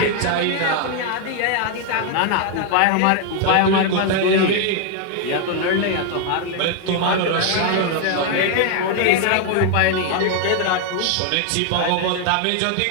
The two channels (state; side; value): different; both; correlation 0.00